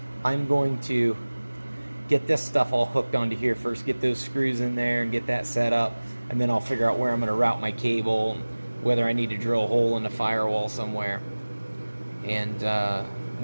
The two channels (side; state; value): both; inverted; correlation -1.00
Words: I'm going to get this stuff all hooked onto here first, get those screws in there and get that set up, and then I'll figure out where I'm going to route my cable, whether I need to drill a hole in the firewall somewhere, and